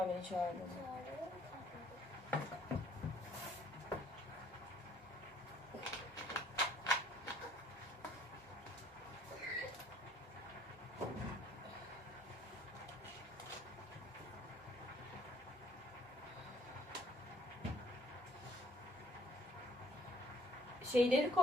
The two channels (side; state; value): both; normal; correlation 0.61